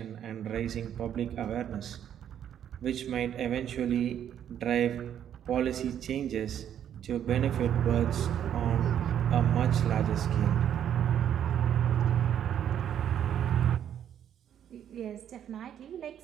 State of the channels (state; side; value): quieter; left; 9.8 dB